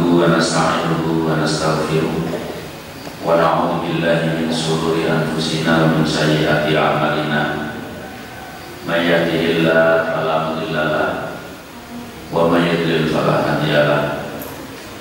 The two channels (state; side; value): identical; both; correlation 1.00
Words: wa nasta'inuhu wa nastaghfiruh. Wa na'udzu billahi min shururi anfusina wa min sayyiati a'malina. May yahdihillahu fala mudilla lahu wa may yudlil fala hadiya lahu.